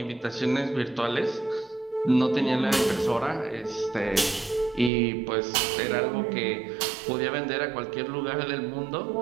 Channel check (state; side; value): drops out; left; at 4.9 s